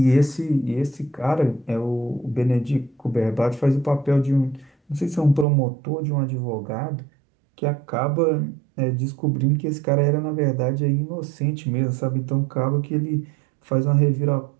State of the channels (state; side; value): drops out; left; at 5.5 s